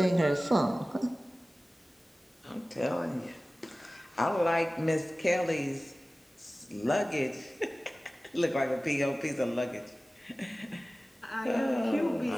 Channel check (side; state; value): both; normal; correlation 0.97